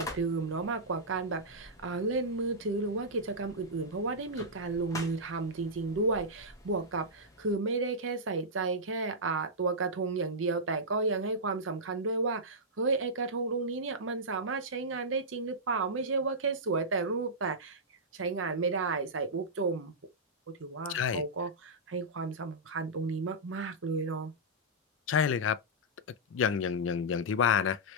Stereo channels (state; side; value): normal; both; correlation -0.11